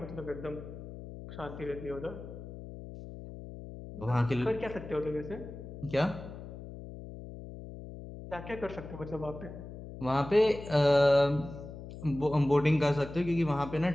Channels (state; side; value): noise; left; hum, 12 dB below the sound